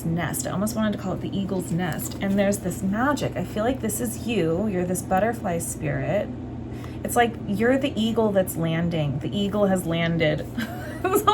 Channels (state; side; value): identical; both; correlation 1.00